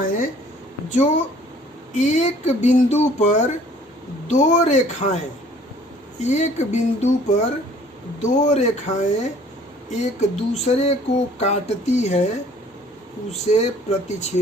जो एक बिंदु पर दो रेखाएं, एक बिंदु पर दो रेखाएं एक दूसरे को काटती है, उसे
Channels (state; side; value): normal; both; correlation 0.55